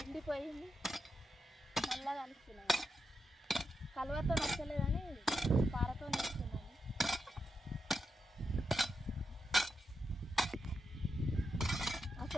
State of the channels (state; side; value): normal; both; correlation 0.86